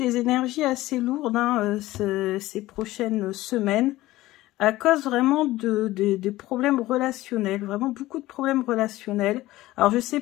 énergies assez lourdes ces prochaines semaines, à cause vraiment des problèmes relationnels, vraiment beaucoup de problèmes relationnels. Alors je ne sais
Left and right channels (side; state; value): right; quieter; 17.0 dB